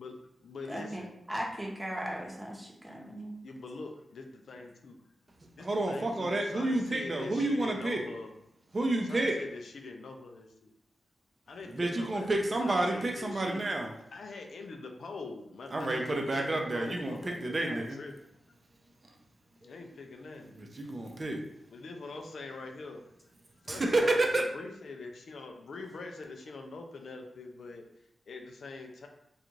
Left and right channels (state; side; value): normal; both; correlation 0.91